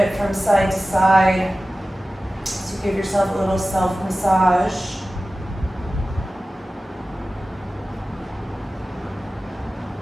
from side to side to give yourself a little self-massage.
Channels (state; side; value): normal; both; correlation 0.96